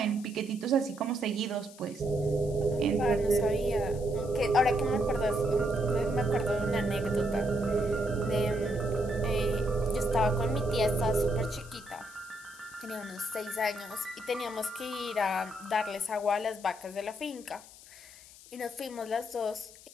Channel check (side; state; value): left; noise; hiss, 20 dB below the sound